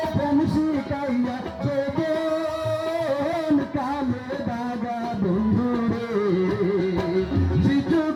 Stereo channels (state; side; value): identical; both; correlation 1.00